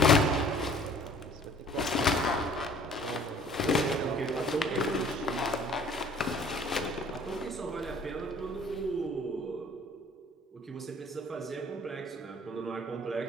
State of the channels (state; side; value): normal; both; correlation 0.52